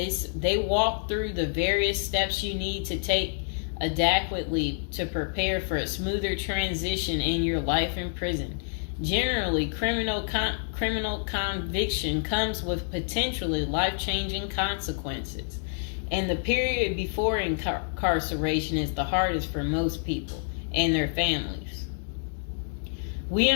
walk through the various steps you need to take adequately to prepare for a smoother transition in your life in prison. Generally, criminal conviction comes with potentially life-changing consequences, and the period before incarceration is the hardest for most people and their families. We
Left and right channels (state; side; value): silent; right; digital silence